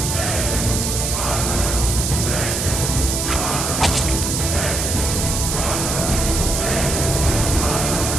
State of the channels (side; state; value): right; noise; hiss, 2 dB below the sound